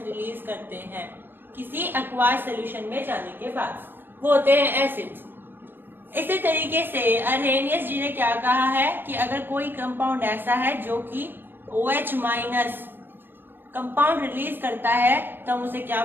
रिलीज करते हैं किसी एक्वास सोल्यूशन में जाने के बाद, वो होते हैं एसिड्स। इसी तरीके से अर्हेनियस जी ने क्या कहा है कि अगर कोई कंपाउंड ऐसा है जो कि OH- कंपाउंड रिलीज करता है तो हम उसे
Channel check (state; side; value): late; left; 0.096 ms